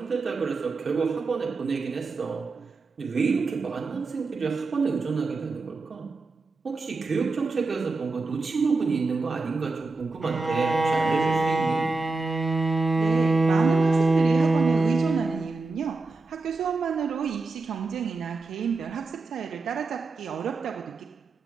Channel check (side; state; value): left; quieter; 3.8 dB